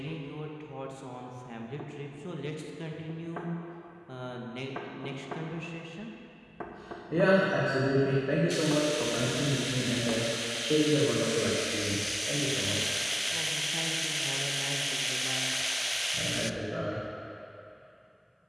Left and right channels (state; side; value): identical; both; correlation 1.00